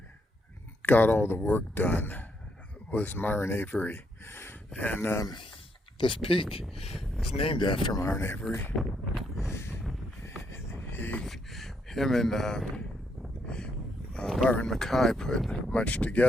got all the work done, was Myron Avery. And this peak is named after Myron Avery. Him and Byron Mackay put much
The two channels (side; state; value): both; normal; correlation 0.76